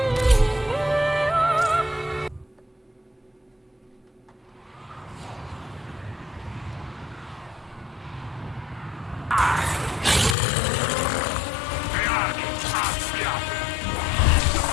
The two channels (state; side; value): drops out; right; at 10.4 s